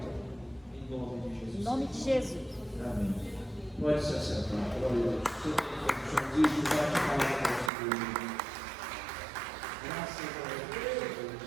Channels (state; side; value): drops out; left; at 7.7 s